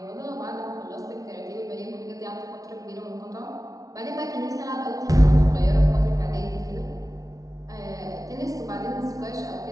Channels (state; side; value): late; left; 0.18 ms